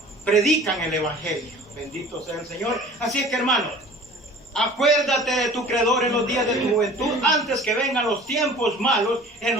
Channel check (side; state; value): both; normal; correlation 0.45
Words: predican el Evangelio. Bendito sea el Señor. Así es que, hermano, acuérdate de tu Creador en los días de tu juventud, antes que vengan los tiempos malos, en